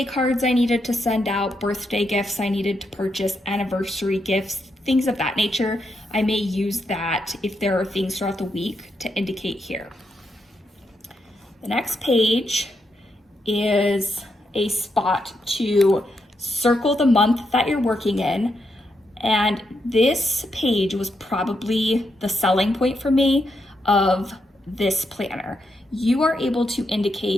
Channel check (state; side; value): normal; both; correlation 0.81